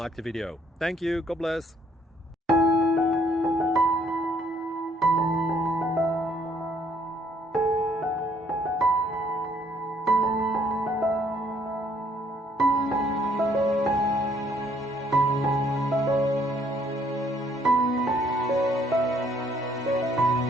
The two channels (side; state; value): both; normal; correlation 0.65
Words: the video. Thank you, God bless.